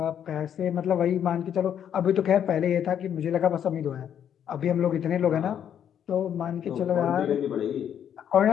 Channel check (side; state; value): right; quieter; 9.2 dB